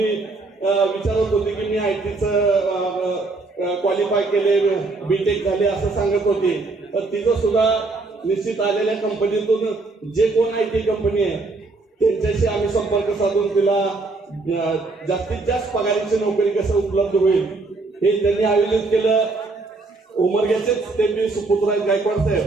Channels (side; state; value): left; quieter; 3.5 dB